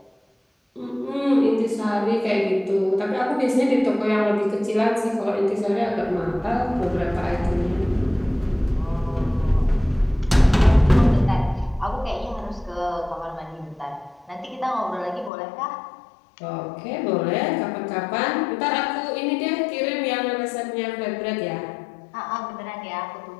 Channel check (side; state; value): right; drops out; at 15.3 s